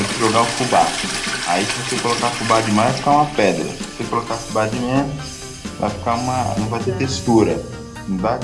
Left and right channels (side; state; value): both; identical; correlation 1.00